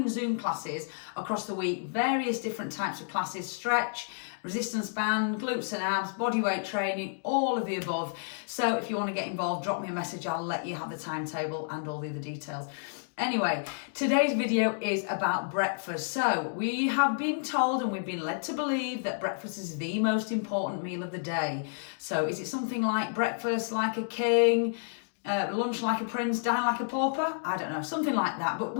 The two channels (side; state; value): right; silent; digital silence